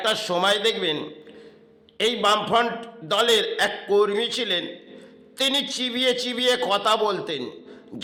সময় দেখবেন এই বামফ্রন্ট দলের এক কর্মী ছিলেন, তিনি চিবিয়ে চিবিয়ে কথা বলতেন,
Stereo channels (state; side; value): identical; both; correlation 1.00